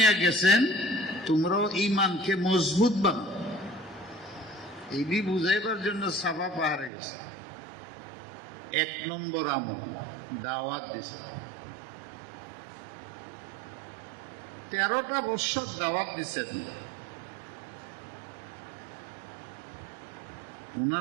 গেছেন। তোমরাও ইমানকে মজবুত বানাও। এই বুঝাইবার জন্য সাফা পাহাড়ে গেছে। 1 নম্বর আমল দাওয়াত দিছে। 13টা বছর দাওয়াত দিছেন।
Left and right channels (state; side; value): drops out; left; at 6.9 s